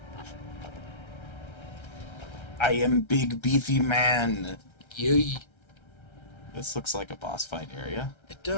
I am big beefy man. Yay. This looks like a boss fight area. It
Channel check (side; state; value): right; late; 1.3 ms